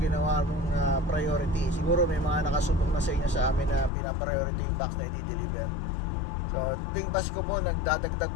ginawa mong priority. Siguro may mga nakasubok na sa inyo sa amin na pinapriority yung box na i-deliver. So tuwing Pasko po, nagdadagdag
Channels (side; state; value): right; drops out; at 3.9 s